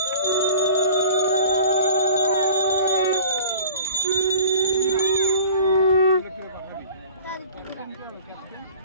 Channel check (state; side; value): inverted; both; correlation -0.45